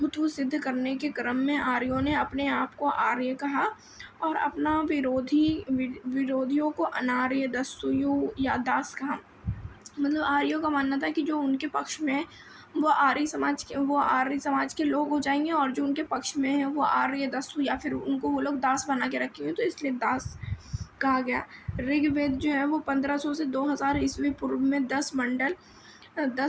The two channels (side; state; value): both; identical; correlation 1.00